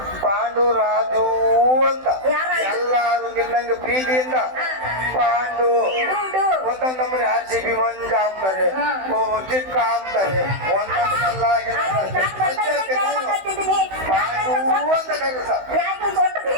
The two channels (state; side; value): late; left; 16 ms